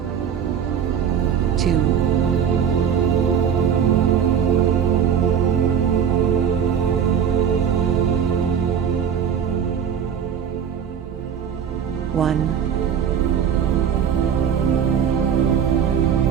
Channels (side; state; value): left; quieter; 8.0 dB